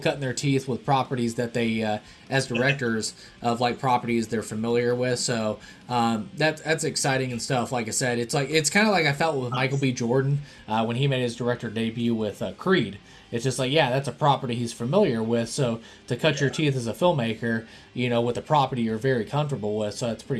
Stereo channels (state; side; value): identical; both; correlation 1.00